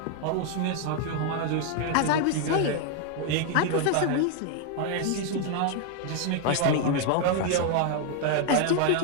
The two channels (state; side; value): different; both; correlation 0.00